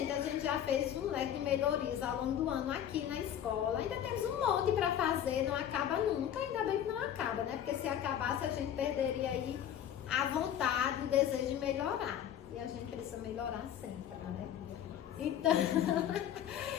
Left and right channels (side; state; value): right; quieter; 10.1 dB